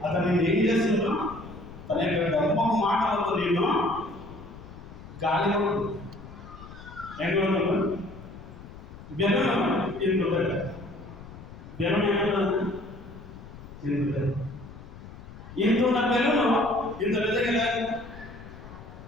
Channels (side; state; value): left; noise; rumble, 16 dB below the sound